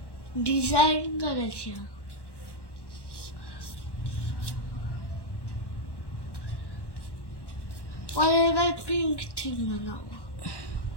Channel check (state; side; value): late; right; 1.1 ms